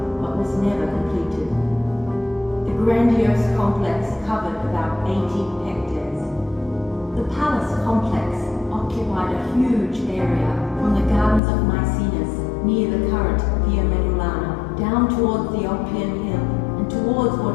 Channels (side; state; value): right; drops out; at 11.4 s